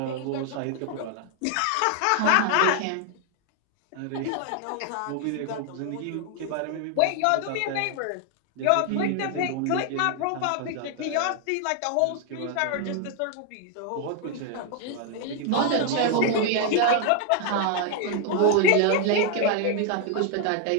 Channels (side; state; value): both; different; correlation 0.00